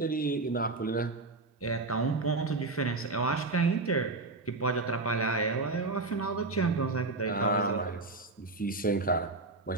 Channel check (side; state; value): left; quieter; 3.4 dB